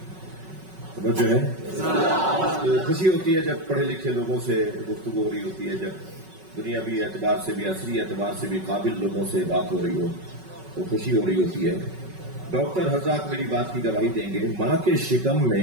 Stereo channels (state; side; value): late; left; 5.3 ms